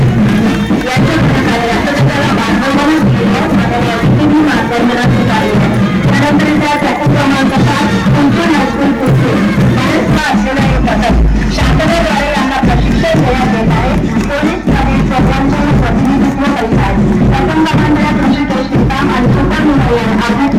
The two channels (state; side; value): identical; both; correlation 1.00